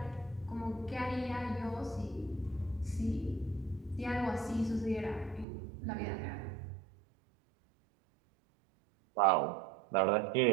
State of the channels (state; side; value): drops out; left; at 5.5 s